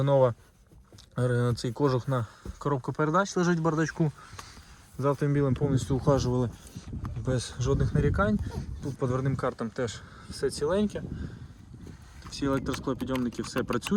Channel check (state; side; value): identical; both; correlation 1.00